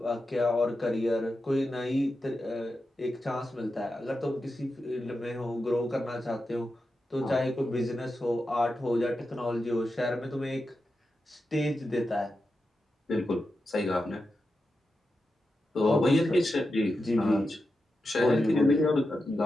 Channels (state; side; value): normal; both; correlation 0.89